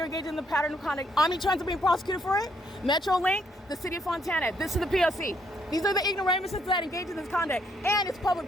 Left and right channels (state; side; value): normal; both; correlation 0.71